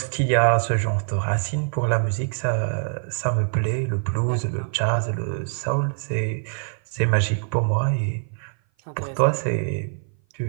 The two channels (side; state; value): left; silent; 57 dB below the other